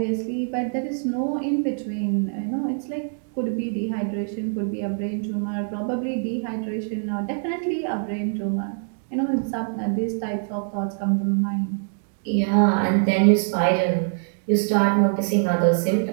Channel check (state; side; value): silent; left; digital silence